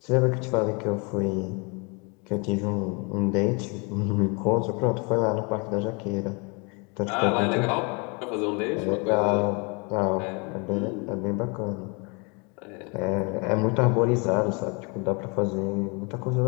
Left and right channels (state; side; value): quieter; right; 31.7 dB